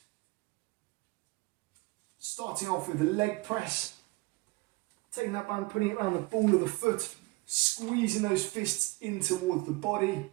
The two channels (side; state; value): left; quieter; 24.1 dB